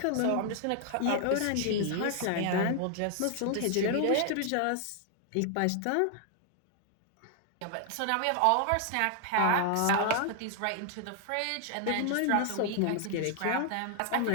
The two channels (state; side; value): different; both; correlation 0.00